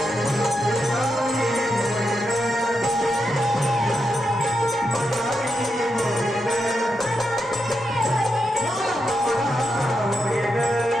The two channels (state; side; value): normal; both; correlation 0.85